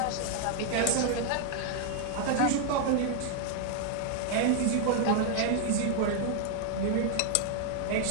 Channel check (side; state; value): both; different; correlation 0.00